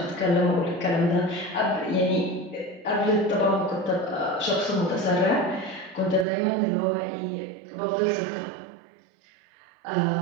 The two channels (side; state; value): left; drops out; at 6.2 s